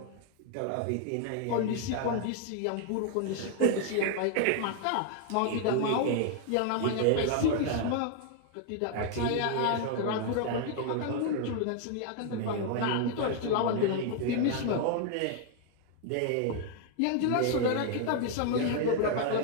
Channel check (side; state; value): both; different; correlation 0.00